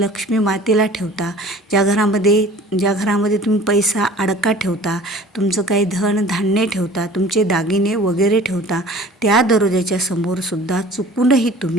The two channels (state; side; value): normal; both; correlation 0.46